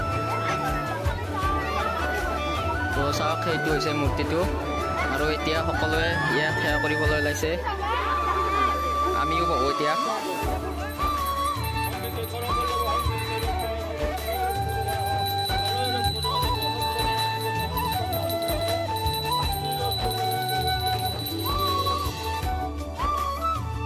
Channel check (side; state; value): both; identical; correlation 1.00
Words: তো চাওক, সেইটো হৈছে মূৰ্তিটো। আৰু এতিয়া সকলোৱে ইয়াক সেৱা কৰিবলৈ ওলাইছে, আমিও বহু এতিয়া।